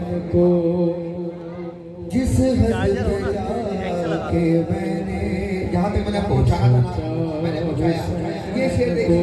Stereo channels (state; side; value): identical; both; correlation 1.00